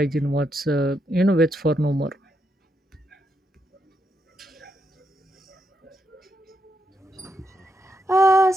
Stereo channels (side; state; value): both; normal; correlation 0.81